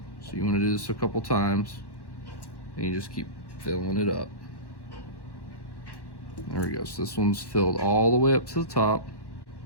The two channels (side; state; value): right; late; 1.1 ms